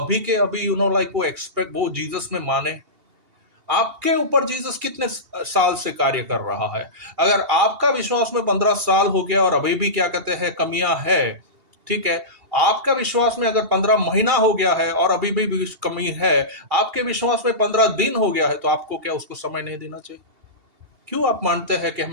के अभी लाइक वो जीसस में माने। आपके ऊपर जीसस कितने साल से कार्य कर रहा है? अगर आपका विश्वास में 15 साल हो गया और अभी भी क्या कहते हैं कमियां है, ठीक है, आपका विश्वास में अगर 15 महीना हो गया है और अभी भी कमी है, आपके विश्वास में 15 दिन हो गया है, तो आपको क्या उसको समय नहीं देना चाहिए? क्यों आप मानते हैं कि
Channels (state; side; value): late; left; 2.8 ms